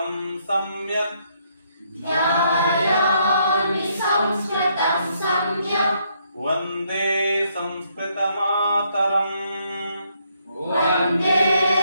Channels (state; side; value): inverted; both; correlation -0.72